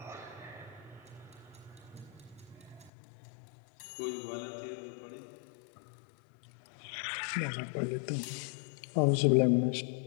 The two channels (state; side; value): drops out; right; at 2.9 s